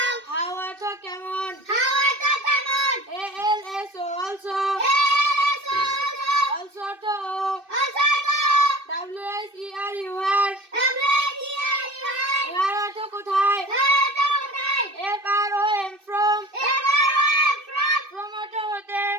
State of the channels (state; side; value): late; left; 2.6 ms